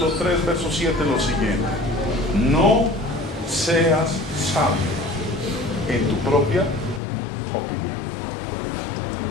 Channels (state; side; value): drops out; right; at 7.0 s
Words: 3, verso 7, lo siguiente: no seas sabio en tu propia opinión.